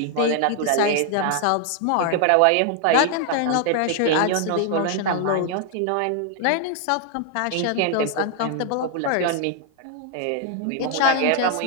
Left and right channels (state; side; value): different; both; correlation 0.00